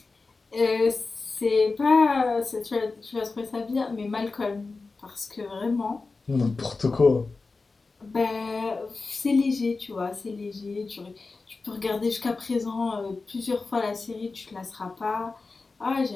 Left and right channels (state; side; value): quieter; right; 3.9 dB